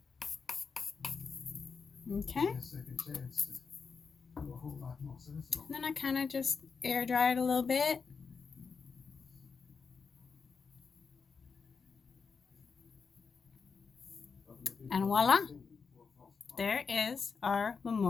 Okay. And then I kind of just air dry it a little bit. And voila, there is our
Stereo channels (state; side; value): quieter; right; 5.3 dB